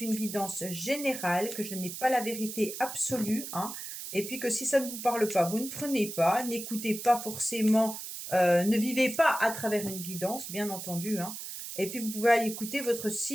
une guidance générale, que je n'ai pas la vérité absolue, hein, et puis que si ça ne vous parle pas, vous ne prenez pas, n'écoutez pas forcément, ne vivez pas à travers une guidance, bien entendu, hein, et puis vous pouvez aller écouter votre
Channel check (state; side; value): noise; right; hiss, 8 dB below the sound